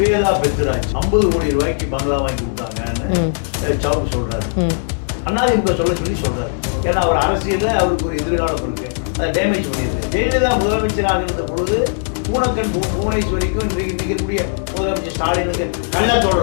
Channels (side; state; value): right; silent; digital silence